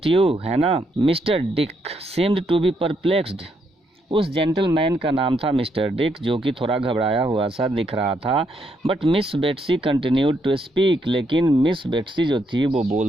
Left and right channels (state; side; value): normal; both; correlation 0.76